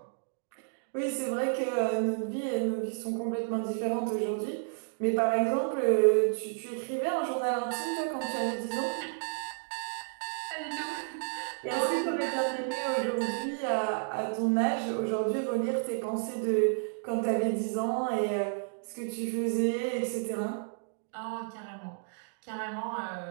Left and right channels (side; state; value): left; silent; digital silence